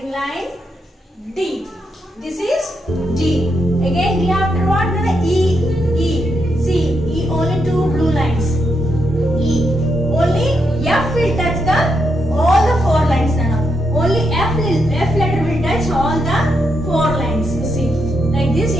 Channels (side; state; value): both; normal; correlation 0.81